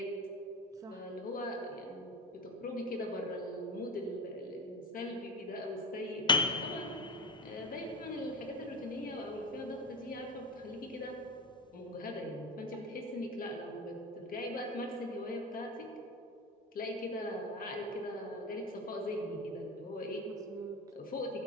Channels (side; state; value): both; normal; correlation 0.24